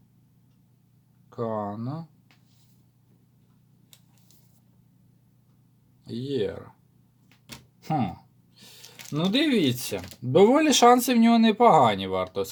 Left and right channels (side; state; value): both; identical; correlation 1.00